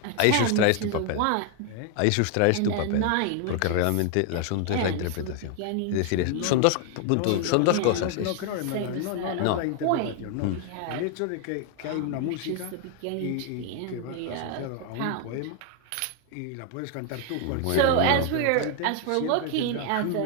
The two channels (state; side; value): different; both; correlation 0.00